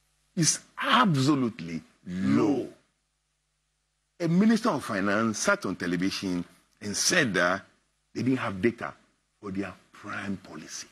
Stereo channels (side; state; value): both; identical; correlation 1.00